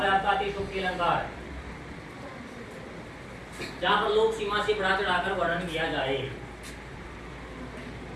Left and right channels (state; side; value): identical; both; correlation 1.00